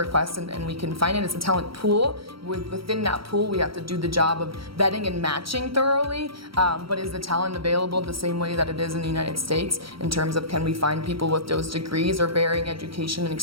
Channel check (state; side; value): late; left; 0.75 ms